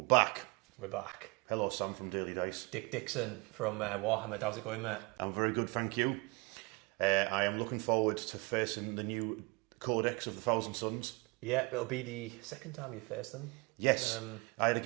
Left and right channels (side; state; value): left; quieter; 27.9 dB